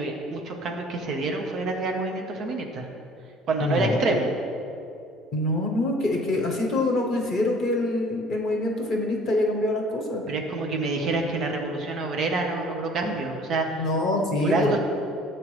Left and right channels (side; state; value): both; normal; correlation 0.52